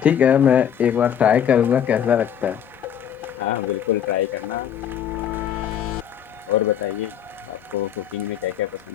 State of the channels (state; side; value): quieter; right; 9.1 dB